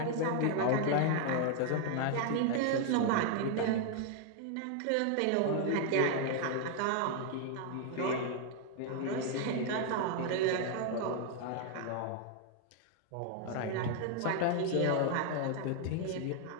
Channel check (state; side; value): different; both; correlation 0.00